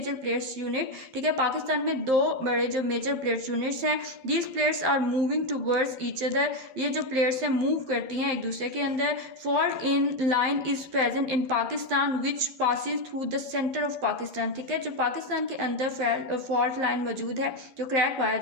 plates unit, ठीक है, पाकिस्तान में दो बड़े जो मेजर प्लेट्स यूनिट्स हैं। These plates are moving towards each other, ये जो प्लेट्स हैं मूव करती हैं एक दूसरे के अंदर। Fault in line is present in Pakistan which passes through the centre of Pakistan, ठीक है। जो पाकिस्तान के अंदर फॉल्ट लाइन मौजूद है, जो क्रैक पाया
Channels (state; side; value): late; left; 12 ms